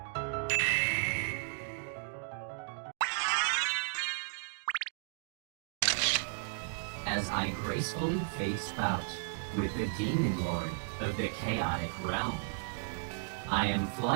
As I gracefully face bout with the demon lord of the chaotic realm, I am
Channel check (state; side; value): silent; left; digital silence